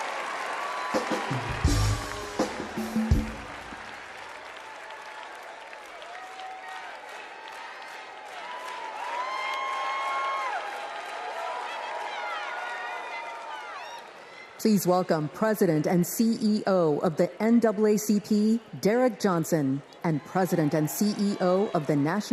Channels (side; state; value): both; identical; correlation 1.00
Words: Please welcome President and CEO of the NAACP, Derek Johnson, and President and CEO of the